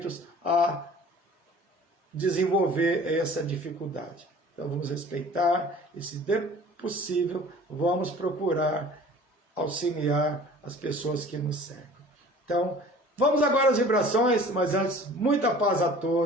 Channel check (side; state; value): both; normal; correlation 0.46